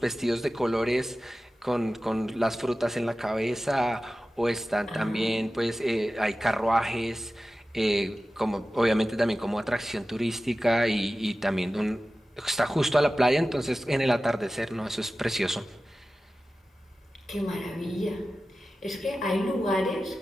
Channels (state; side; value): normal; both; correlation 0.95